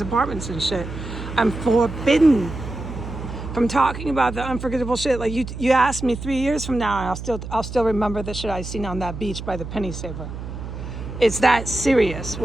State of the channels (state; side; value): noise; right; hum, 9 dB below the sound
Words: apartments and shit. I'm forbidden from talking about the unforgettable shit. Like you asked me 3 years from now and I'll still remember the shit I seen on that beach by the Penny Saver. It's that serious,